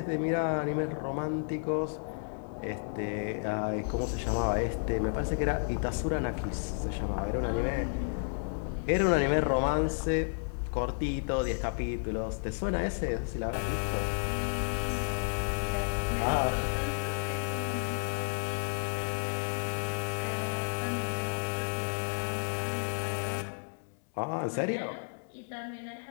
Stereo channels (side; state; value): right; silent; digital silence